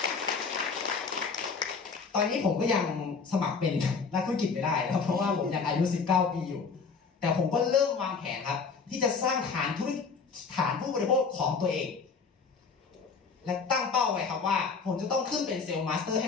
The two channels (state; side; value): quieter; right; 5.2 dB